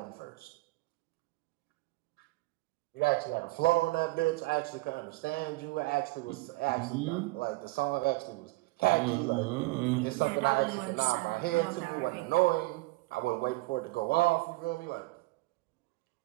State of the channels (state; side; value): quieter; left; 21.9 dB